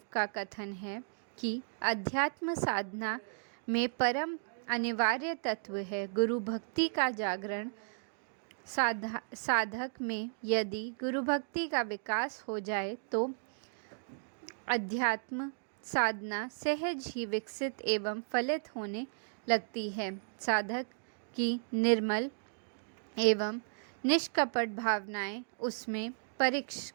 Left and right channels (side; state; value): left; silent; digital silence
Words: का कथन है कि अध्यात्म साधना में परम अनिवार्य तत्व है गुरु भक्ति का जागरण। साधक में यदि गुरु भक्ति का विकास हो जाए तो अध्यात्म साधना सहज ही विकसित एवं फलित होने लगती है। साधक की निर्मल एवं निष्कपट भावनाएं उसमें